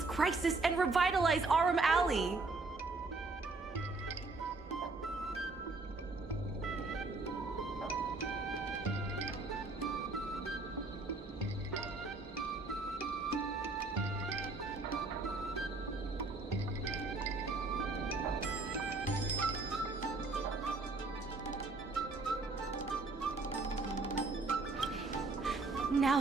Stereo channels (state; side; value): quieter; left; 3.5 dB